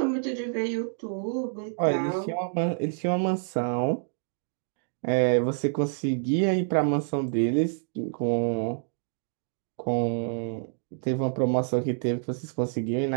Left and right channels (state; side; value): silent; left; digital silence